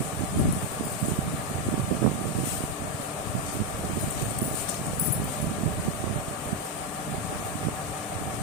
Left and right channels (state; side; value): normal; both; correlation 0.07